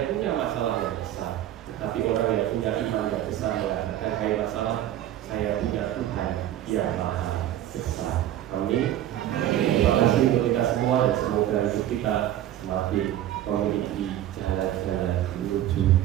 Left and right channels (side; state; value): left; quieter; 12.4 dB